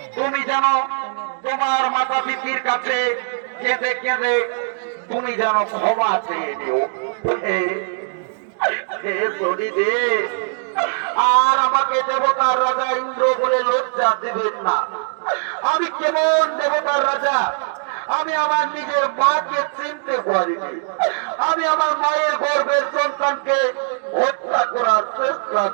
তুমি যেন তোমার মাতা পিতার কাছে কেঁদে কেঁদে তুমি যেন ক্ষমা চেয়ে নিও। আর আমাকে দেবতার রাজা ইন্দ্র বলে লজ্জা দেবেন না। আমি কেমন দেবতার রাজা, আমি আমার নিজের মাকে চিনতে পারিনি, আমি আমার মায়ের গর্ভের সন্তানকে হত্যা করার চেষ্টা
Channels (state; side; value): silent; left; 65 dB below the other